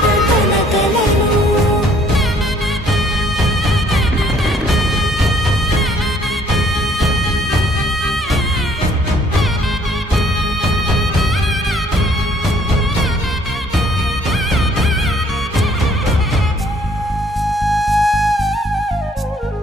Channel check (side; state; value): both; normal; correlation 0.62